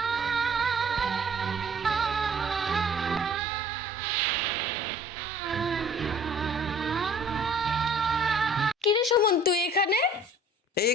কিরে সুমন, তুই এখানে? এই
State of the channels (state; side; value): normal; both; correlation 0.52